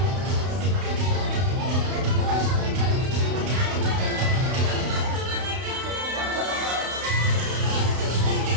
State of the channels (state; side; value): late; left; 32 ms